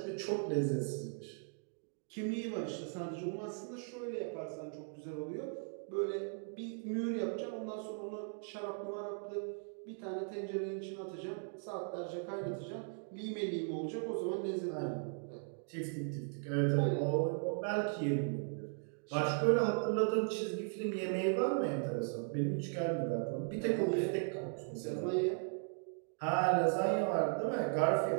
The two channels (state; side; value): silent; left; 53 dB below the other